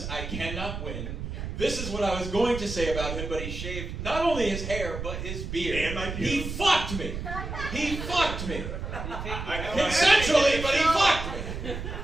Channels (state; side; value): noise; right; rumble, 6 dB below the sound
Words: I cannot win. This is what I was going to say about him, but he shaved not only his hair, but his beard. And my pubes. He fucked me. He fucked me. Consensually, Consensually, but he fucked me.